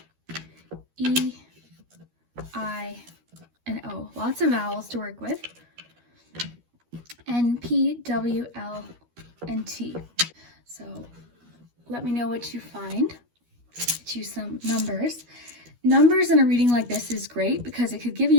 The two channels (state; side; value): late; left; 12 ms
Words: E, I, and O. Lots of vowels to work with. N, P, W, L, and T. So let me know what you find. Get you some numbers. Numbers in a reading like this is great because it could give